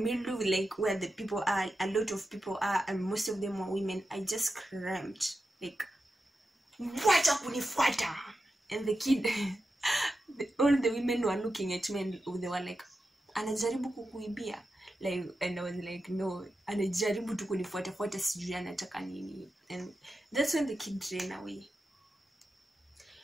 like where the people are, a lot of people are, and most of them were women, I just screamed like, wacha kunifuata. And the kid all the women were looking at me and they were like, anajaribu kukuibia, like, and I was like, no, anajaribu tu kunifuata sijui anataka nini. And that's when the kid ran away.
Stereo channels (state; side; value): normal; both; correlation 0.90